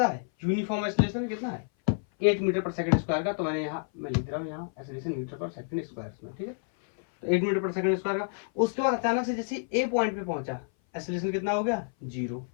है, यूनिफॉर्म एक्सेलरेशन कितना है 8 मीटर पर सेकंड स्क्वायर का। तो मैंने यहाँ मैं लिख रहा हूँ यहाँ acceleration metre per second square में, ठीक है। तो 8 मीटर पर सेकंड स्क्वायर का। उसके बाद अचानक से जैसे ए पॉइंट पे पहुंचा, एक्सेलरेशन कितना हो गया 0।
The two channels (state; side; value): silent; right; 57 dB below the other